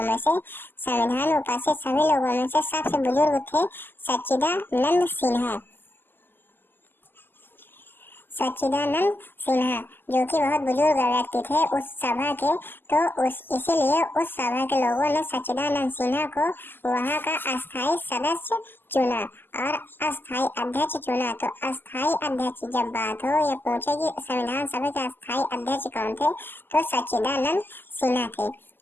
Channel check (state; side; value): late; right; 0.095 ms